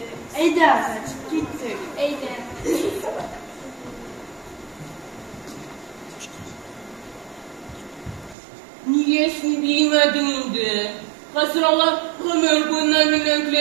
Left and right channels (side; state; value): left; drops out; at 8.3 s